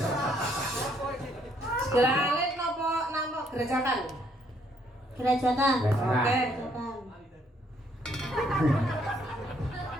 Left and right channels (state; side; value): normal; both; correlation 0.68